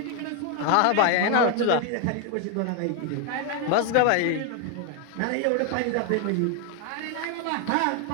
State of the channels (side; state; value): both; different; correlation 0.01